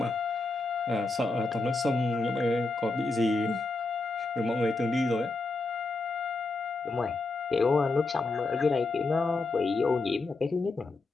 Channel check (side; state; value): right; quieter; 3.4 dB